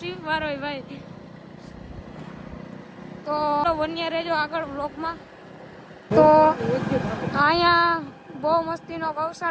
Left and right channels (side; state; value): both; identical; correlation 1.00